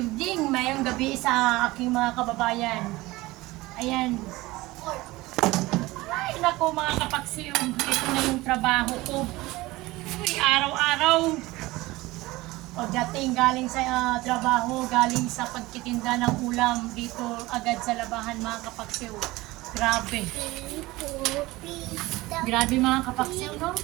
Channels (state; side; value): quieter; left; 19.8 dB